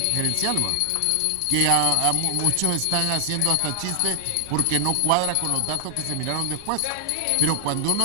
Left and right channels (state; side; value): different; both; correlation 0.00